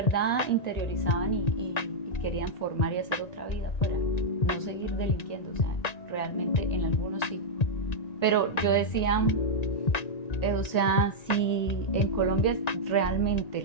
interiorizaban y querían formar y hacer otra vida afuera, no seguir delinquiendo, o sea, realmente en algunos sí. Pero yo decía, o sea, si en Colombia realmente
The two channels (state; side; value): late; right; 1.9 ms